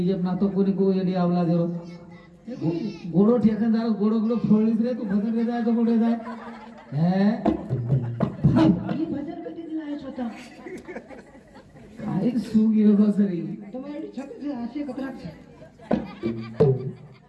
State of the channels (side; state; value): both; identical; correlation 1.00